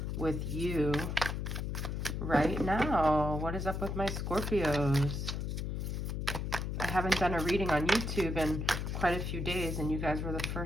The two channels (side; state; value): left; noise; hum, 2 dB below the sound